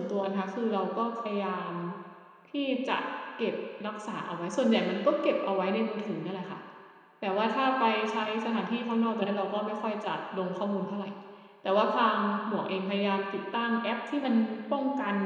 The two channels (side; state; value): both; identical; correlation 1.00